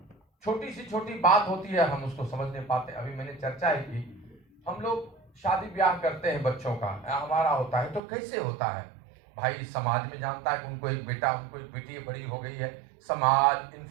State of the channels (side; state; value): left; drops out; at 8.0 s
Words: छोटी सी छोटी बात होती है, हम उसको समझ नहीं पाते। अभी मैंने चर्चा ही की, हम लोग शादी ब्याह करते हैं बच्चों का, हमारा होता है, तो कैसे होता है भाई? समाज में जानता है कि उनको एक बेटा, उनको एक बेटी बड़ी हो गई है, समाज,